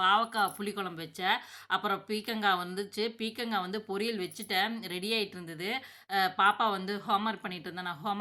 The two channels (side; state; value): both; identical; correlation 1.00